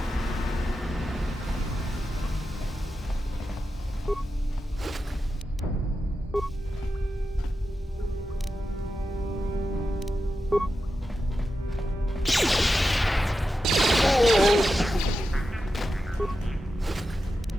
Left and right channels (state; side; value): normal; both; correlation 0.90